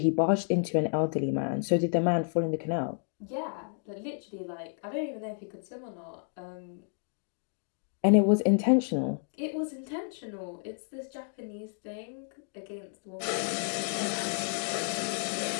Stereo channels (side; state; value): right; silent; 57 dB below the other